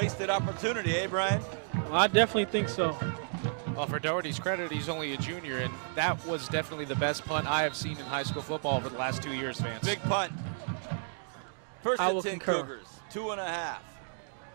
opportunity, eh, Brian? Well, I definitely think so. Well, for Doherty's credit, he's only a junior, and that was definitely the best punt I have seen in high school football over the last 2 years, Vance. Big punt. First I and will 10 concur. Cougars, 2.5.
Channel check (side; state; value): left; silent; digital silence